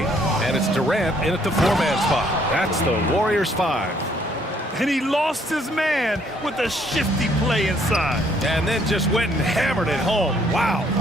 And it's Durant in at the 4-man spot. That's the Warriors 5. And he lost his man with a shifty play inside. And then just went and hammered it home. Wow.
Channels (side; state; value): both; normal; correlation 0.66